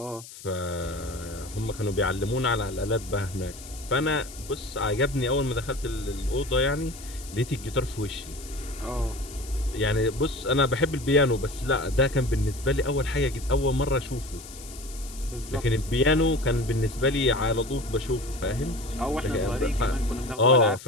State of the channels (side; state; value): left; noise; hiss, 16 dB below the sound